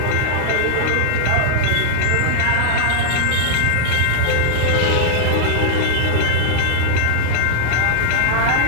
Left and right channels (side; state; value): both; different; correlation -0.01